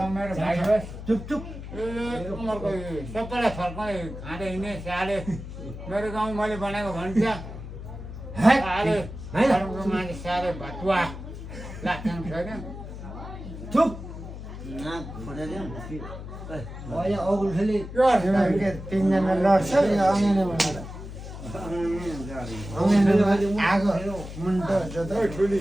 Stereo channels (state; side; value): noise; left; hum, 10 dB below the sound